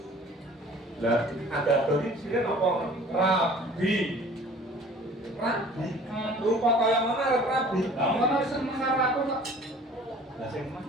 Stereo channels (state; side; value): normal; both; correlation 0.48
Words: Lah, ada tadi sini apa? Rabi. Rabi. Rupa kaya mana rabi? Lah ngono seneng karo aku kok. Lah sing mah.